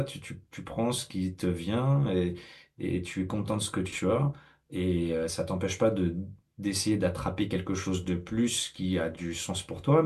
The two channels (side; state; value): both; identical; correlation 1.00